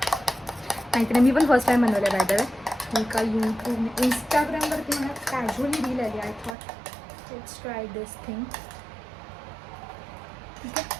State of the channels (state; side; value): drops out; left; at 6.6 s